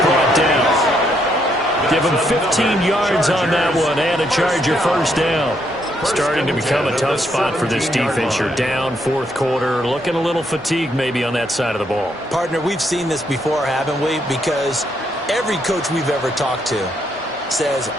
brought down. Give him 15 yards on that one and a Charger first down. Starting to become a tough spot for this defense. You're down fourth quarter, looking a little fatigued maybe on that side of the ball. Partner, we've seen this before, haven't we? Because every coach we've ever talked to says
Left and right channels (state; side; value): normal; both; correlation 0.75